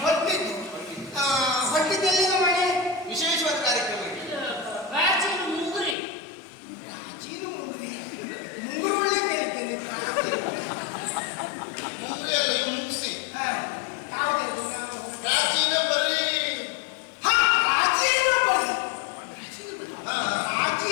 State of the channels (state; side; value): drops out; right; at 6.0 s